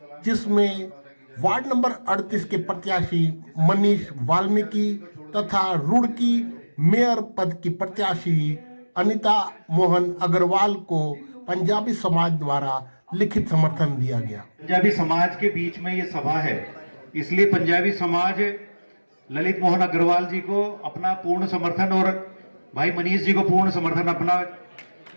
जिसमें वार्ड नंबर 38 के प्रत्याशी मनीष वाल्मीकि तथा रुड़की मेयर पद की प्रत्याशी अनीता मोहन अग्रवाल को पंजाबी समाज द्वारा लिखित समर्थन दिया गया। पंजाबी समाज के बीच में ये सभा है, इसलिए पंजाबी समाज ललित मोहन अग्रवाल जी को अपना पूर्ण समर्थन और भाई मनीष जी को पूर्ण समर्थन अपना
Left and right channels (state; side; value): inverted; both; correlation -1.00